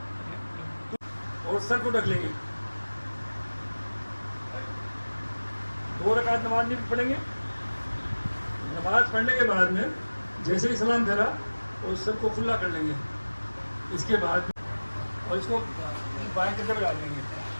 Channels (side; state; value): both; inverted; correlation -1.00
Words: और सर को ढक लेंगे। 2 रकात नमाज नहीं पढ़ेंगे। नमाज पढ़ने के बाद में जैसे ही सलाम फेरा और सर को खुला कर लेंगे। इसके बाद और इसको बाएं कंधे पे डाल लेंगे।